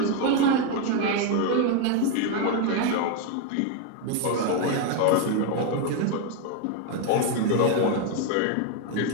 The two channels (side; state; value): both; different; correlation 0.01